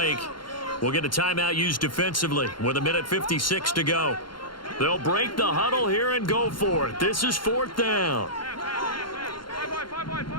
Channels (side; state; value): right; late; 0.72 ms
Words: we'll get a timeout used defensively with 1:56 to go. They'll break the huddle here and go for it. This is fourth down.